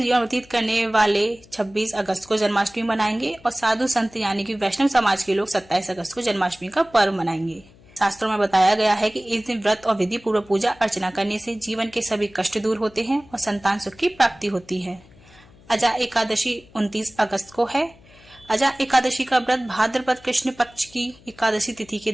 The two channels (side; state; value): left; noise; hum, 26 dB below the sound